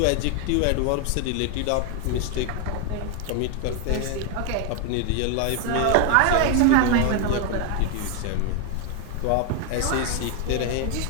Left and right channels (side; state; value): both; different; correlation 0.01